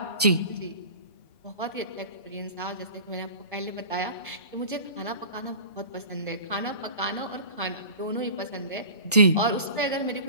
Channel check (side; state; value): both; inverted; correlation -0.38